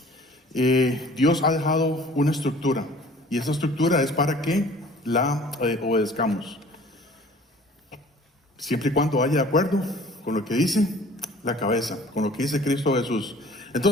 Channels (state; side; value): normal; both; correlation 0.50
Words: Dios ha dejado una estructura, y esa estructura es para que la obedezcamos, siempre y cuando vaya de acuerdo con lo que dice la cabeza, con lo que dice Cristo Jesús.